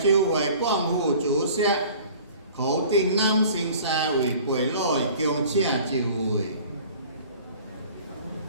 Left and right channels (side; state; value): both; inverted; correlation -0.47